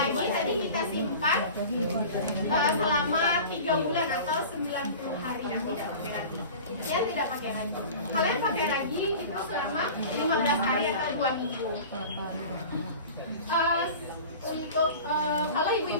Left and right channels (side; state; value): both; inverted; correlation -0.38